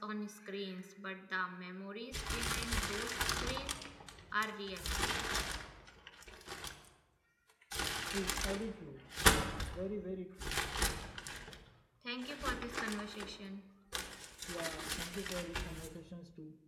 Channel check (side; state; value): both; identical; correlation 1.00